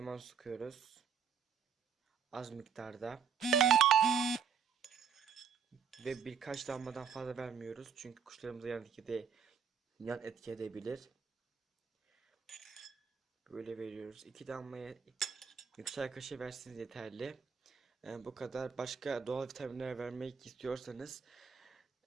sıkıyoruz. Az miktarda. Ve birkaç damladan fazla vermiyoruz. Çünkü kuşlarımıza yan etki edebilir. Böyle veriyoruz. 2 damlaya çay kaşığı versiniz yeterli. Bu kadar. Başka doğal vitaminler vermek istiyorsanız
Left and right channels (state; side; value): quieter; left; 7.1 dB